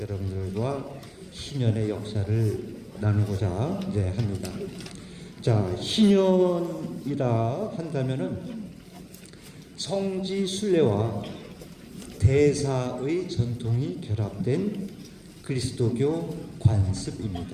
희년의 역사를 나누고자 합니다. 자, 희년이라 한다면은 성지 순례와 대사의 전통이 결합된 그리스도교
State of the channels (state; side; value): identical; both; correlation 1.00